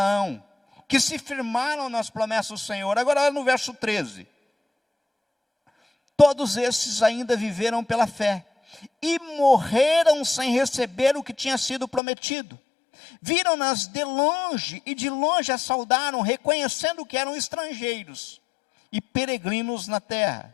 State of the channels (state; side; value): drops out; right; at 12.0 s